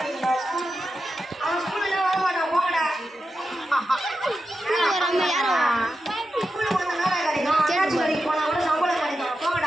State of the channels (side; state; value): both; normal; correlation 0.90